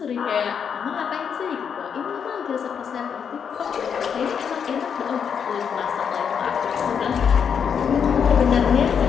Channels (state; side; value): quieter; right; 7.2 dB